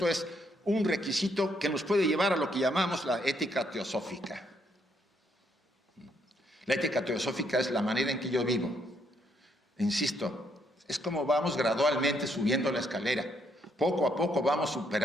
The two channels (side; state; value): both; normal; correlation 0.73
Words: es un requisito que nos puede llevar a lo que llamamos la ética teosófica. La ética teosófica es la manera en que yo vivo. Insisto, es como vamos gradualmente subiendo la escalera. Poco a poco vamos